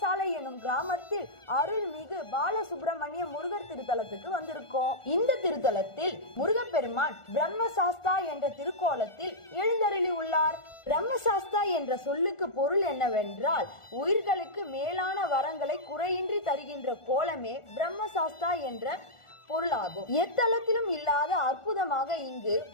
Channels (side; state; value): right; late; 1.4 ms